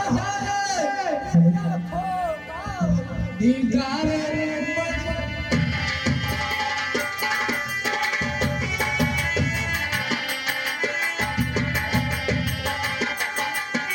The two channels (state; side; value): identical; both; correlation 1.00